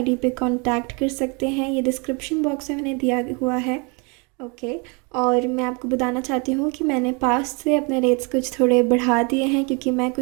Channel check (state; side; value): quieter; left; 32.0 dB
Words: पे कांटेक्ट कर सकते हैं, ये डिस्क्रिप्शन बॉक्स में मैंने दिया हुआ है, ओके। और मैं आपको बताना चाहती हूँ कि मैंने पास्ट से अपने रेट्स कुछ थोड़े बढ़ा दिए हैं, क्योंकि मैं